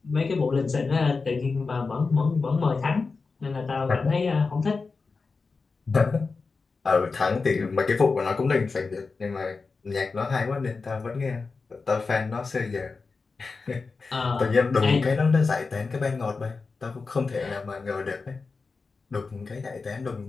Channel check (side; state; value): right; quieter; 4.4 dB